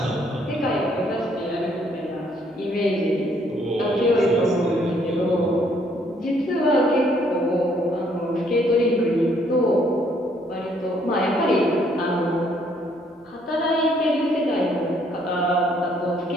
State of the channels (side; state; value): both; normal; correlation 0.67